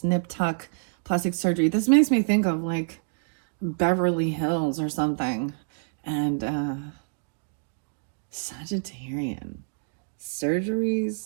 nip tuck plastic surgery. This makes me think of like Beverly Hills or something. And Sagittarian.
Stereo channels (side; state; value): left; silent; digital silence